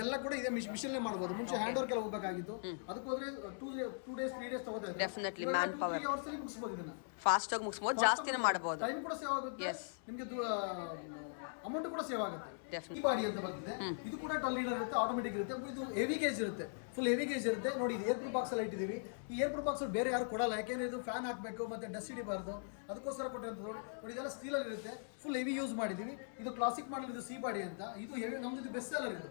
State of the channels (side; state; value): right; silent; digital silence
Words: ಕೂಡ ಇದೆ ಮಿಷನ್ ಮಾಡಬಹುದು. ಮುಂಚೆ ಹ್ಯಾಂಡ್ ವರ್ಕ್ ಎಲ್ಲ ಹೋಗಬೇಕಾಗಿತ್ತು. ಅದಕ್ಕೆ ಹೋದ್ರೆ 2 days 3 days ತಗೋತಾ ಇದೆ. Definitely man power. 3 ಅವರ್ಸ್ ಅಲ್ಲಿ ಮುಗಿಸಬಹುದು. ಇದನ್ನ ಫಾಸ್ಟ್ ಆಗಿ ಮುಗಿಸಬಹುದು, ಜಾಸ್ತಿನೇ ಮಾಡಬಹುದು. ಟೈಮ್ ಕೂಡ ಸೇವ್ ಆಗುತ್ತೆ, ನಿಮಗೆ ಅಮೌಂಟ್ ಕೂಡ ಸೇವ್ ಆಗುತ್ತೆ. ಈ ಬಾಡಿ ಅಂತ ಬಂದಿದೆ. ಇದು ಕೂಡ 12 ಲೀಡರ್ ಇರುತ್ತೆ, ಆಟೋಮೆಟಿಕ್ ಇರುತ್ತೆ. ಇದು ಹೆವಿ ಗೇಜ್ ಇರುತ್ತೆ, ಫುಲ್ ಹೆವಿ ಗೇಜ್ ಇರುತ್ತೆ. ನೋಡಿ ಇದು ಏರ್ ಪ್ರೂಫ್ ಬಾಕ್ಸ್ ಅಲ್ಲಿ ಇಟ್ಟಿದ್ದೀವಿ. ಈ ಏರ್ ಪ್ರೂಫ್ ಬಾಕ್ಸ್ ಬೇರೆ ಯಾರು ಕೊಡಲ್ಲ, ಯಾಕೆಂದ್ರೆ ಇದು ಫ್ಯಾನ್ ಹಾಕಬೇಕು ಮತ್ತೆ ಡಸ್ಟ್ ಹಿಡಿಬಾರ್ದು, ಅದಕ್ಕೋಸ್ಕರ ಕೊಟ್ಟಿರೋದು. ನೋಡಿ ಇದೆಲ್ಲ ಸ್ಟೀಲ್ ಅಲ್ಲಿ ಇರುತ್ತೆ, ಫುಲ್ ಹೆವಿ ಯೂಸ್ ಮಾಡಿದೀವಿ. ಇದು ಕ್ಲಾಸಿಕ್ ಮಾಡಲ್, ಇದು ಸಿ ಬಾಡಿ ಅಂತ. ಇದು ಹೆವಿ, ನಮ್ದು ಇದು ಬೆಸ್ಟ್ ಸೆಲ್ಲರ್.